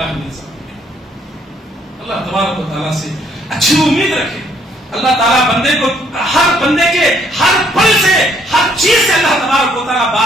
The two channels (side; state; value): both; normal; correlation 0.66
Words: من ذالک۔ اللہ تبارک و تعالیٰ سے اچھی امید رکھے۔ اللہ تعالیٰ بندے کو ہر بندے کے ہر پل سے ہر چیز سے اللہ تبارک و تعالیٰ